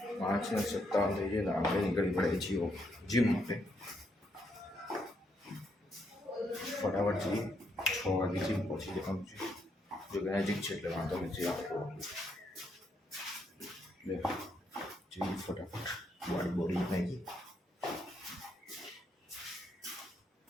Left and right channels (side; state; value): both; normal; correlation 0.76